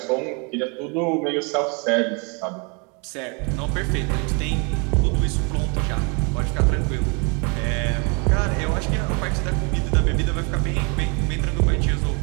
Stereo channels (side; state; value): left; quieter; 33.3 dB